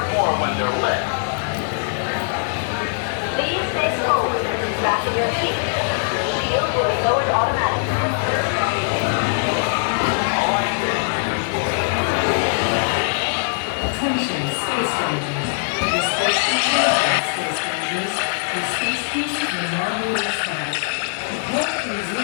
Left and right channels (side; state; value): right; silent; digital silence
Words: more when they're lit. Please stay forward and fasten your seat. Shield will be lowered automatically. Attention, Space Rangers. The Space Rangers, Space Rangers. The Space Cruiser will now be restarted. Prepare to